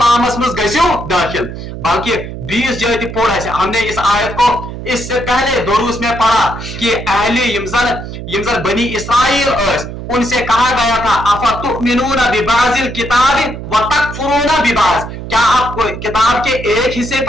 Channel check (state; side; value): noise; right; hum, 9 dB below the sound